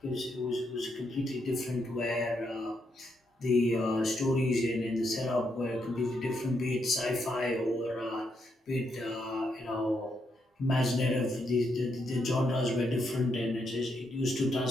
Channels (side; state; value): both; normal; correlation 0.79